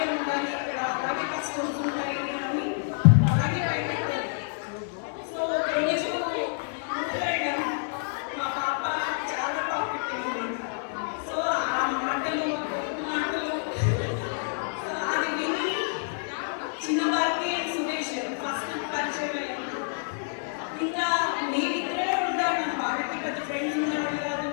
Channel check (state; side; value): silent; right; 59 dB below the other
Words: ఉండాలి ఇక్కడ, అలాగే కష్టమ్స్ ఉంటాయి అని అలాగే బయటకు. సో రోజు వెళ్ళాము. మా పాప చాలా టాపిక్ అయింది. సో ఆ మాటలు సో అది విని చిన్నవారికి సురేష్ ఫస్ట్ పరిచయం అయ్యింది. ఇంకా మేమిద్దరే ఉంటాడు, వాళ్ళకి పెద్ద ఫ్రెండ్స్ ఉండేవాళ్ళు కాదు.